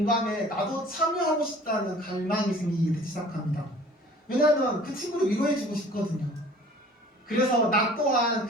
나도 참여하고 싶다는 갈망이 생기기 시작합니다. 왜냐하면 그 친구를 위로해주고 싶거든요. 그래서 나 또한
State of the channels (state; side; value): normal; both; correlation 0.48